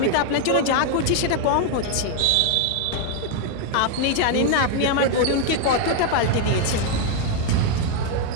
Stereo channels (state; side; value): different; both; correlation 0.00